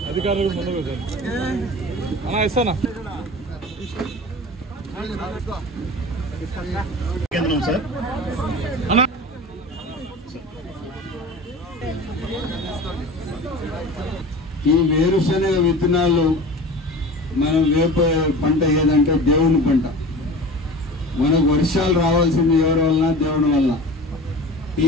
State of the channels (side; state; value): both; normal; correlation 0.36